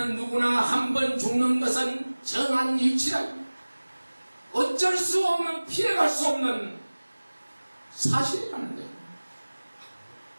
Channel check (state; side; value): inverted; both; correlation -1.00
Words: 누구나 한 번 죽는 것은 정한 이치라. 어쩔 수 없는, 피해갈 수 없는 사실이라는 거예요.